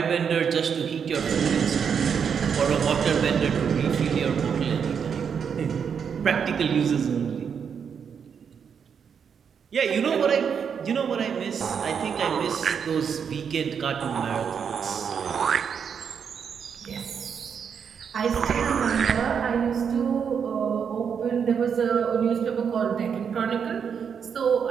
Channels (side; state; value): left; quieter; 7.0 dB